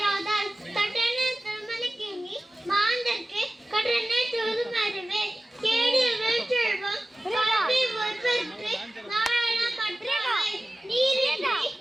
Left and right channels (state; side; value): normal; both; correlation 0.97